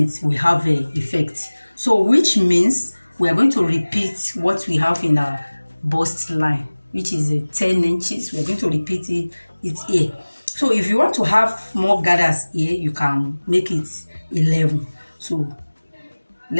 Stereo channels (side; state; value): both; inverted; correlation -1.00